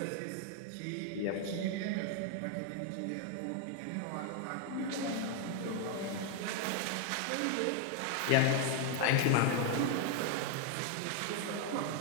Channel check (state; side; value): different; both; correlation 0.01